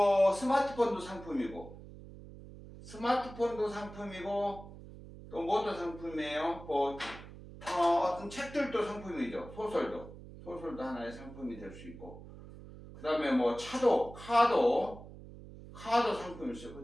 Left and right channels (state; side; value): noise; right; hum, 16 dB below the sound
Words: 스마트폰도 상품이고 스마트폰도 상품이고 또 뭐도 상품이에요? 뭐 어떤 책들도 상품이죠. 소설도 하나의 상품이 될 수 있고 그 다음에 뭐 카도 상품일 수 있고